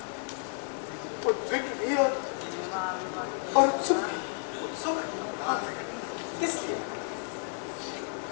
उद्विग्न भी और उत्सुक भी। उत्सुक? हाँ। किस लिए?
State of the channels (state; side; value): silent; right; 57 dB below the other